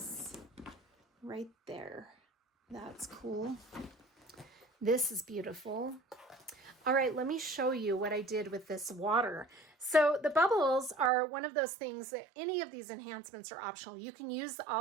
Right there. That's cool. This is beautiful. All right, let me show you what I did with this water. So the bubbles are one of those things that any of these enhancements are optional. You can use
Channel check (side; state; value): left; drops out; at 11.1 s